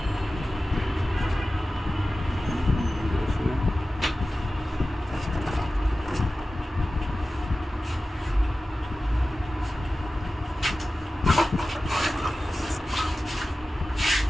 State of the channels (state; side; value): normal; both; correlation 0.95